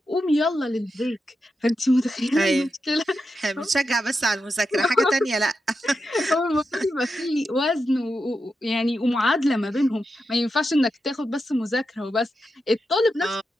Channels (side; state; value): both; normal; correlation 0.88